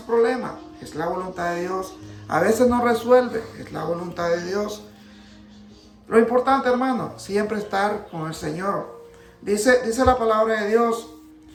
es la voluntad de Dios. A veces no resuelve, es la voluntad de Dios. Lo importante, hermano, siempre estar con el Señor. Dice la palabra de Dios,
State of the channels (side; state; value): both; identical; correlation 1.00